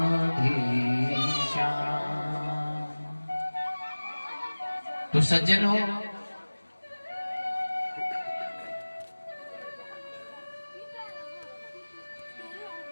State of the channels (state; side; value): inverted; both; correlation -1.00